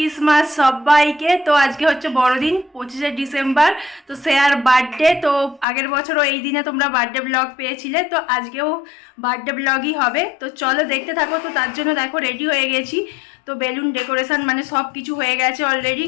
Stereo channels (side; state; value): right; drops out; at 5.7 s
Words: সবাইকে। তো আজকে হচ্ছে বড়দিন, 25শে ডিসেম্বর। তো শেয়ার বার্থডে। তো আগের বছরও এই দিনে তোমরা বার্থডে ব্লগ পেয়েছিলে, তো আজকেও বার্থডে ব্লগই হবে। তো চলো দেখতে থাকো। তো তার জন্য দেখো রেডি হয়ে গেছি। তো বেলুন ডেকোরেশন মানে সব কিছু হয়ে গেছে অলরেডি,